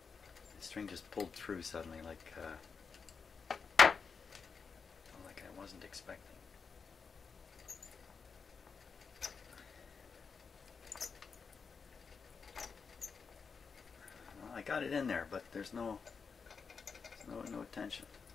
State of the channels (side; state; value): right; quieter; 5.5 dB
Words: The string just pulled through suddenly, like I wasn't expecting. Well, I got it in there, but there's no tension.